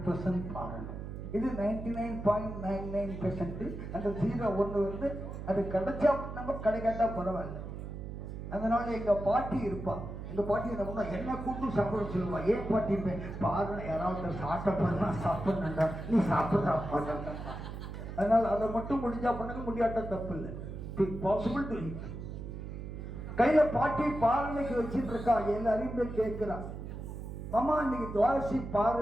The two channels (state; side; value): noise; right; hum, 8 dB below the sound